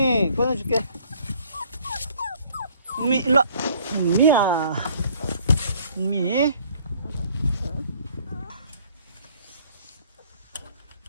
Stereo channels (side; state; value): both; inverted; correlation -0.58